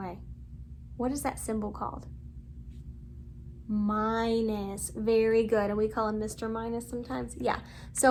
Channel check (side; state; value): both; identical; correlation 1.00